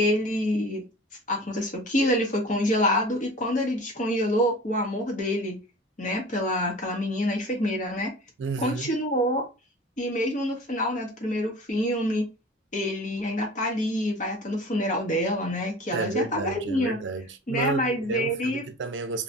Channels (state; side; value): normal; both; correlation 0.40